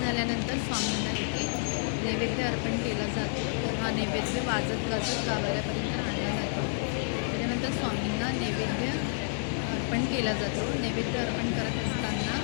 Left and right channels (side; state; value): right; silent; digital silence